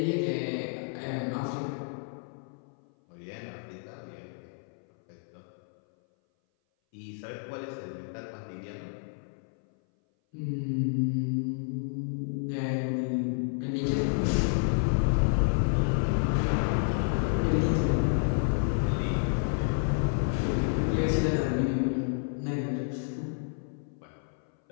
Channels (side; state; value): right; silent; 58 dB below the other